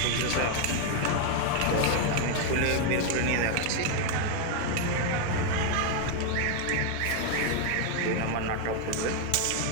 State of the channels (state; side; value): different; both; correlation 0.00